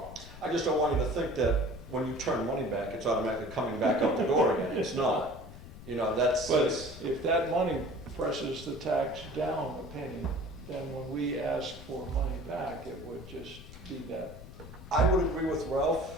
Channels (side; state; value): left; noise; rumble, 15 dB below the sound